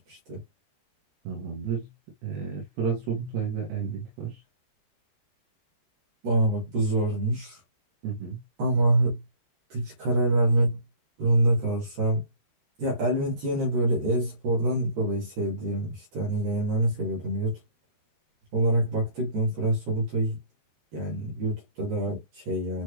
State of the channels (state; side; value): late; left; 13 ms